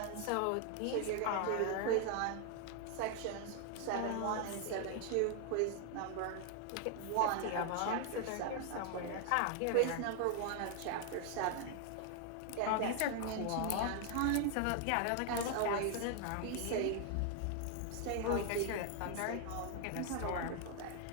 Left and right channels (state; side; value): different; both; correlation 0.00